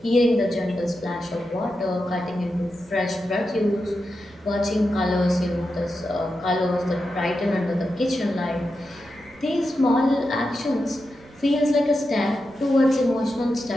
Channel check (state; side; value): noise; right; rumble, 26 dB below the sound